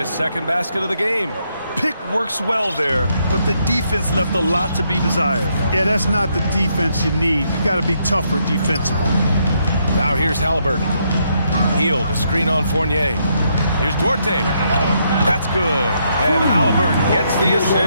second basket of the game. Pick works well there, but the defense left a lot to be desired. Yeah, that's not the defense you need. You got to be tougher defensively. Now here's Halliburton. Heel to screen on Fournier. Here's Duarte. That's good. And Halliburton gets the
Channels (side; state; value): both; inverted; correlation -0.76